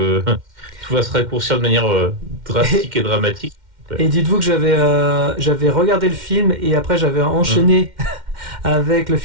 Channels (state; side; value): late; left; 2.1 ms